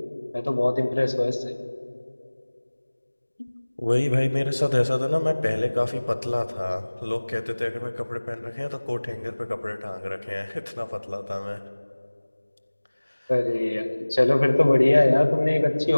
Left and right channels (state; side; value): inverted; both; correlation -1.00